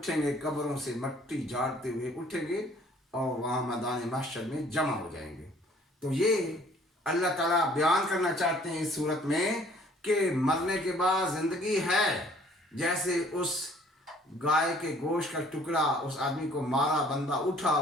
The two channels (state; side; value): normal; both; correlation 0.57